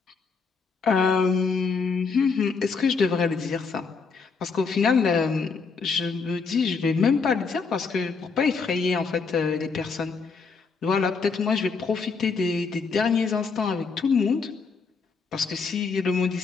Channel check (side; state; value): right; quieter; 4.9 dB